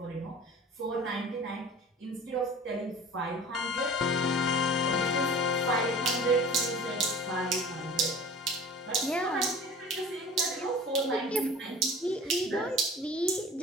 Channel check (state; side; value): normal; both; correlation 0.42